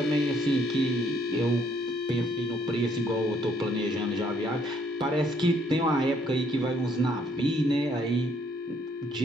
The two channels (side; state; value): both; normal; correlation 0.67